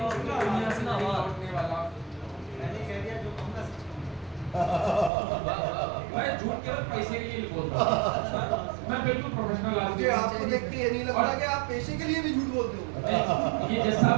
दुनिया से नहीं लौटने वाला। मैं झूठ केवल पैसे के लिए बोलता हूँ, मैं बिल्कुल प्रोफेशनल आदमी। मुझे आपको देख के ये नहीं लग रहा कि आप पैसे के लिए भी झूठ बोलते हो। ये जैसा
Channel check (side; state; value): left; drops out; at 5.1 s